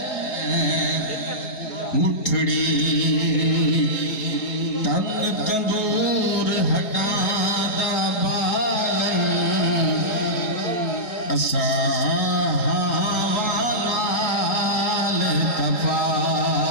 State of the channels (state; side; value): late; right; 3.8 ms